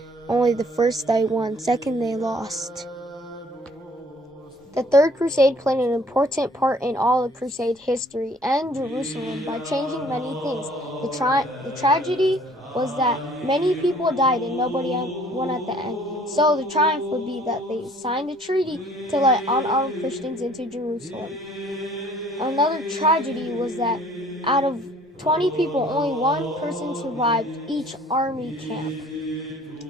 only the first they won, second they lost. The Third Crusade played an important part in all of Crusade history and Jerusalem by changing many things. The tragedy was that many people died and nobody won at the end. So the triumph would be that they signed a treaty to let unarmed Christians into Jerusalem. Another tragedy was that out of 20 people, only one person survived each army camp.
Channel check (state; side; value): normal; both; correlation 0.56